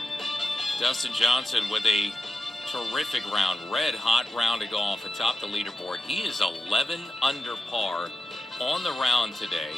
Dustin Johnson with a terrific round, red-hot round of golf atop the leaderboard. He is 11 under par on the round today,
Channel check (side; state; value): both; normal; correlation 0.92